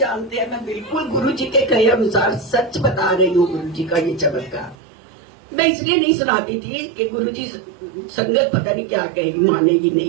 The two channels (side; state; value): left; drops out; at 4.8 s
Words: हैं मैं बिल्कुल गुरुजी के कहे अनुसार सच बता रही हूँ। गुरुजी का ये चमत्कार मैं इसलिए नहीं सुनाती थी कि गुरुजी संगत पता नहीं क्या कहेगी, मानेगी नहीं,